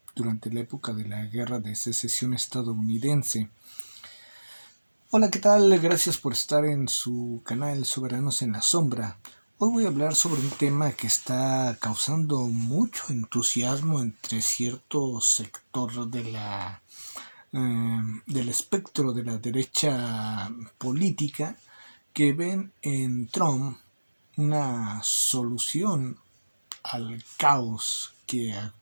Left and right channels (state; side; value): inverted; both; correlation -1.00